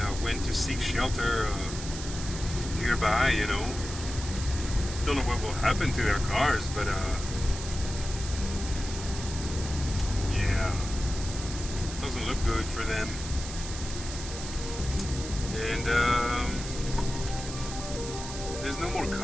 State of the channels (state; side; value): noise; right; hiss, 9 dB below the sound